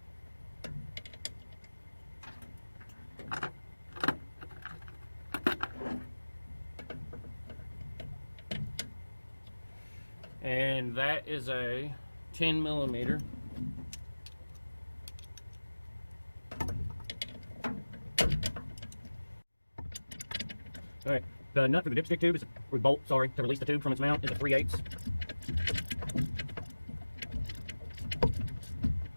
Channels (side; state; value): both; inverted; correlation -1.00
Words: And that is a 10 millimeter. Alright, the nut for the dipstick tube is, or bolt, sorry, to release the tube from its mount is a 3/8.